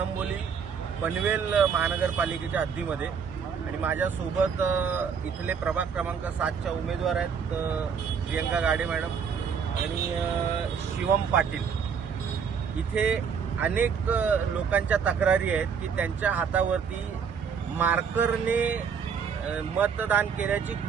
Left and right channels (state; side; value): quieter; left; 6.6 dB